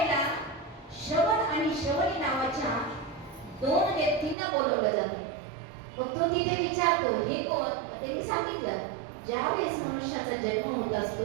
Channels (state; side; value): drops out; left; at 4.4 s